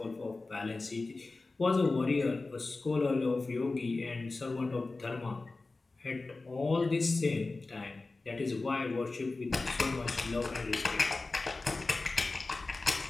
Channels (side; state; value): right; quieter; 3.5 dB